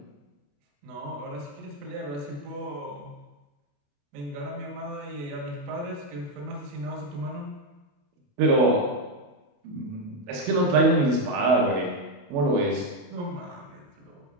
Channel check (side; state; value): left; late; 28 ms